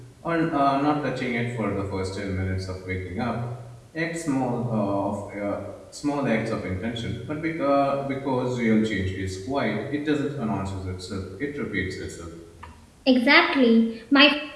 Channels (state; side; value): identical; both; correlation 1.00